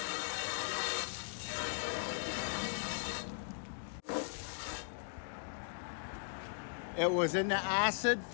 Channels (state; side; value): silent; right; digital silence